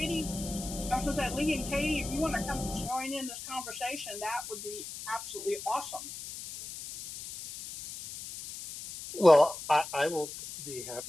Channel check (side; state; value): left; noise; hiss, 10 dB below the sound